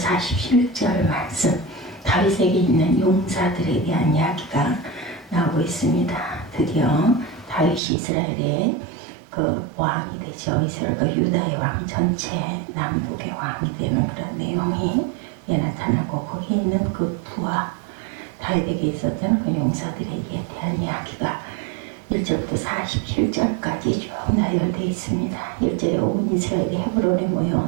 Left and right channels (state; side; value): drops out; left; at 7.8 s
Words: 말씀, 다윗에게 있는 용사들에 대한 이야기가 나오고 있습니다. 드디어 다윗이 이스라엘의 그 왕이 되죠. 이스라엘과 유다의 왕, 전체 남북의 왕이 되는 그런 내용이 나타나고, 거기에 있는 그 부하 다윗에게 있었던 그 용사들에 대한 이야기가 1절부터 47절까지 쭉 나열되어 있습니다. 1절에 온 이스라엘이 헤브론에